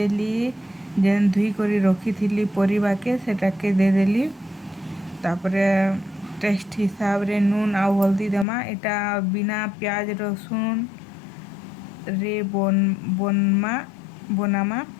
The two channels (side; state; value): right; drops out; at 8.5 s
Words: जेन धुई कर रखी थी परिबा के सेटा के देदेली। तापरे टेस्ट हिसाब रे नून आउ हल्दी देमा। एटा बिना प्याज रसुन रे बनामा।